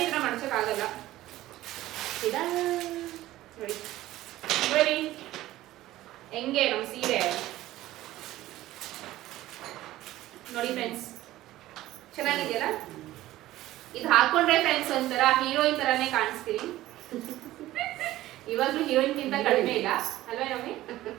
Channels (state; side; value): quieter; left; 15.7 dB